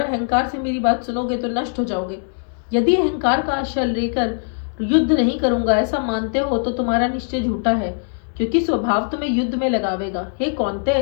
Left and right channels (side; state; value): right; silent; 65 dB below the other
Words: अहंकार से मेरी बात सुनोगे तो नष्ट हो जाओगे। यदि अहंकार का आश्रय लेकर युद्ध नहीं करूंगा ऐसा मानते हो तो तुम्हारा निश्चय झूठा है, क्योंकि स्वभाव तुम्हें युद्ध में लगावेगा। हे कौन्तेय,